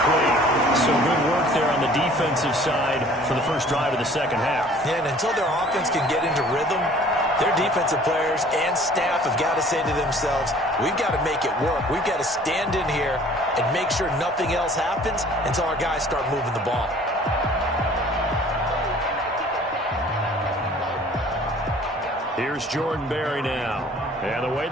So good work there on the defensive side for the first drive of the second half. Yeah, and until their offense can get into rhythm, their defensive players and staff have got to say to themselves, we've got to make it work. We've got to stand in here and make sure nothing else happens until our guys start moving the ball. Here's Jordan Berry now. And the way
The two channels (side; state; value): both; normal; correlation 0.52